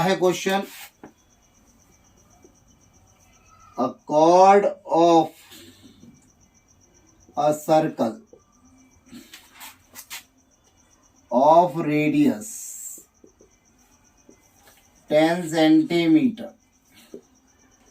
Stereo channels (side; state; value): both; identical; correlation 1.00